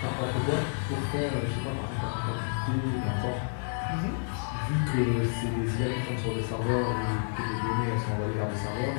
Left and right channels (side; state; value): right; silent; digital silence